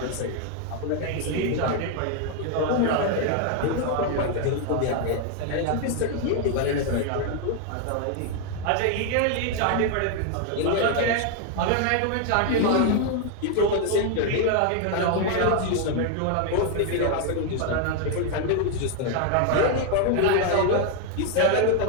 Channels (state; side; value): different; both; correlation 0.00